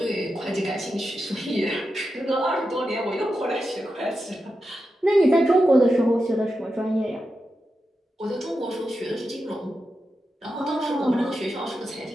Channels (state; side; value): normal; both; correlation 0.89